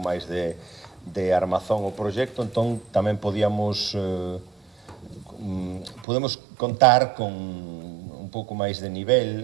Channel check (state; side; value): drops out; left; at 6.1 s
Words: de armazón ao proxecto, entón tamén podemos contar con un pouco máis de